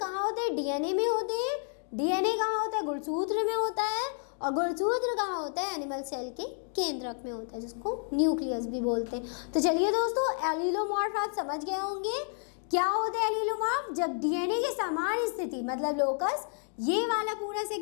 होते हैं? डीएनए में होते हैं। डीएनए कहाँ होता है? गुणसूत्र में होता है। और गुणसूत्र कहाँ होता है? एनिमल सेल के केंद्रक में होता है, जिसको न्यूक्लियस भी बोलते हैं। तो चलिए दोस्तों, एलीलोमॉर्फ आप समझ गए होंगे क्या होते हैं एलीलोमॉर्फ। जब डीएनए के समान स्थिति, मतलब लोकस, ये वाला पूरा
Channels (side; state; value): right; silent; 57 dB below the other